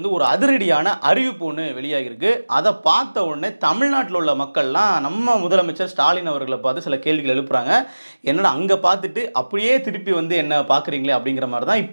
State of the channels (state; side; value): inverted; both; correlation -1.00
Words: ஒரு அதிரடியான அறிவிப்பு ஒன்று வெளியாகிருக்கு. அதை பார்த்த உடனே தமிழ்நாட்டில் உள்ள மக்கள்லாம் நம்ம முதலமைச்சர் ஸ்டாலின் அவர்களை பார்த்து சில கேள்விகள் எழுப்புறாங்க. என்னடா அங்கே பார்த்துட்டு அப்படியே திருப்பி வந்து என்ன பார்க்குறீங்களே அப்படிங்கிற மாதிரி தான்